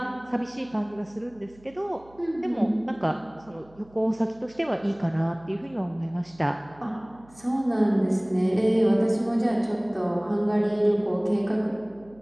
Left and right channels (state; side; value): noise; right; hum, 26 dB below the sound